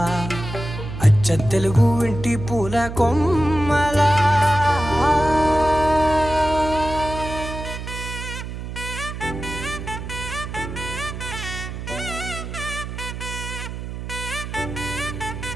అచ్చ తెలుగు ఇంటి పూల కొమ్మలా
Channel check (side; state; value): right; noise; hum, 8 dB below the sound